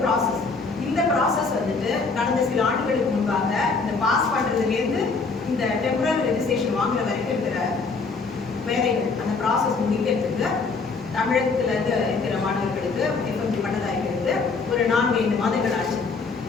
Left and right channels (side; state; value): right; quieter; 4.4 dB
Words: ப்ராசஸ். இந்த ப்ராசஸ் கடந்த சில ஆண்டுகளுக்கு முன்பாக இந்த பாஸ் பண்ணுறதுலேருந்து இந்த டெம்பரரி ரெஜிஸ்ட்ரேஷன் வாங்குற வரைக்கும் இருக்கிற வேலைகள், அந்த ப்ராசஸ் முடிக்கிறதுக்கு தமிழகத்தில் இருக்கிற மாணவர்களுக்கு எஃப்எம்ஜி பட்டதாரிகளுக்கு ஒரு 4-5 மாதங்கள் ஆச்சு.